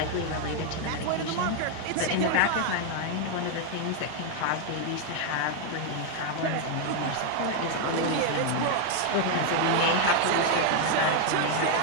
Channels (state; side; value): different; both; correlation 0.00